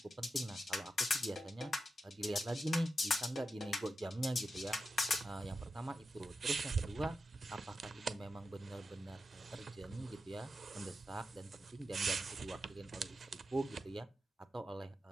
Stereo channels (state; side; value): normal; both; correlation 0.89